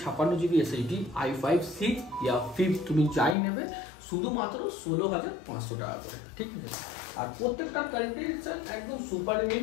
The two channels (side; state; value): right; drops out; at 3.4 s